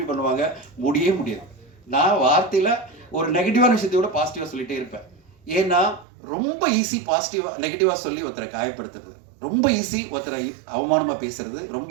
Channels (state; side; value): drops out; left; at 6.1 s